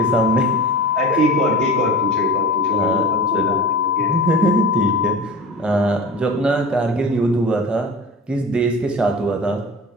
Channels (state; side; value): normal; both; correlation 0.34